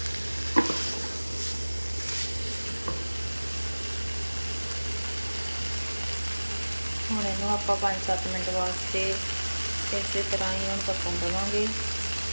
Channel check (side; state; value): both; inverted; correlation -1.00